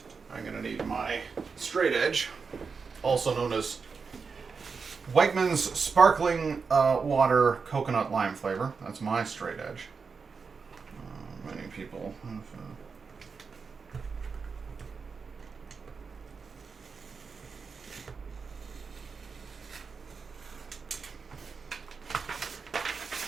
I'm going to need my straight edge, also known as Wegmans Sparkling Water Coconut Lime Flavor. That's my straight edge. Many people have,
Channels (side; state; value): left; quieter; 5.2 dB